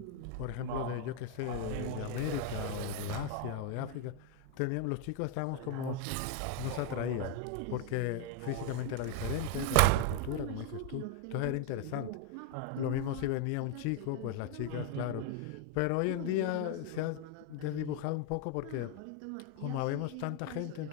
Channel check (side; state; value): both; different; correlation 0.00